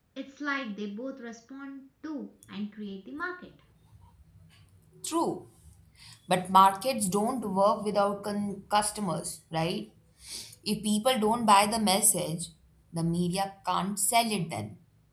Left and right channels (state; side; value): identical; both; correlation 1.00